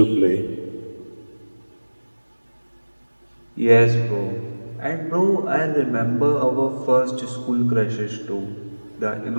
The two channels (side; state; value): both; inverted; correlation -1.00